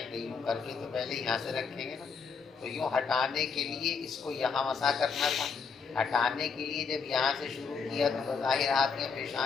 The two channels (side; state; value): right; quieter; 5.5 dB